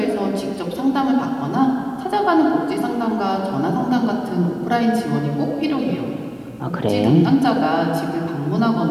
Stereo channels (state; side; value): identical; both; correlation 1.00